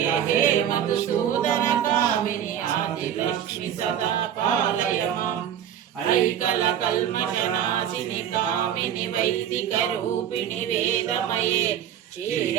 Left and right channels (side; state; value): left; quieter; 9.9 dB